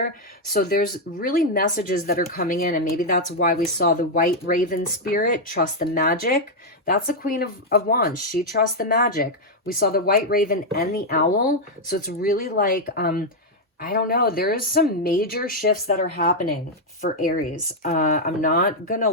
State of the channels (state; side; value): normal; both; correlation 0.00